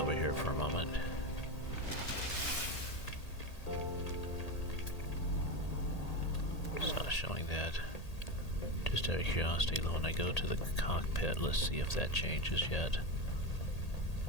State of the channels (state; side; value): late; right; 1.8 ms